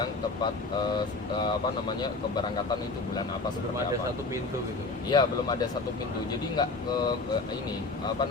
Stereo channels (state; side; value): quieter; right; 3.6 dB